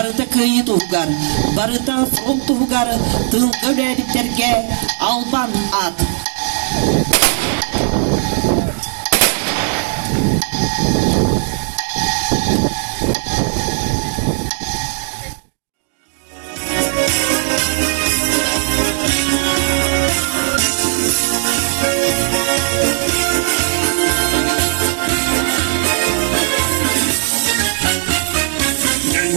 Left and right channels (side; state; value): left; silent; digital silence